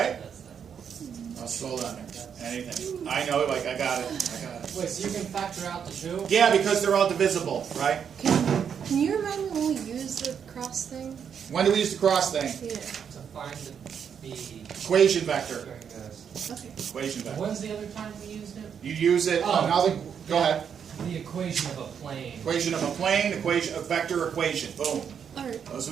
I'll slow down there. Anything. I know, like, I got it. Wait, so you can factor out the 2? Yeah, because they're all divisible, right? Can you remind me when we use the cross thing? When do we use the cross thing? Yeah. To find the Equation vector. Okay. Equation vector. When's the other time we used it? You use it. Oh. Now, go ahead. The equation of a plane. Equation of a plane, equation, a vector equation. Boom. All right. Those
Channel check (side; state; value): left; quieter; 7.6 dB